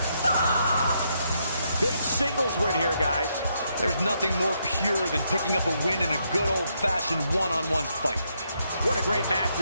Fox. Big singles win here, guys. There's nothing more pure than picking up a win in a good old-fashioned one-on-one fight. What a great match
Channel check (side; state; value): both; inverted; correlation -0.77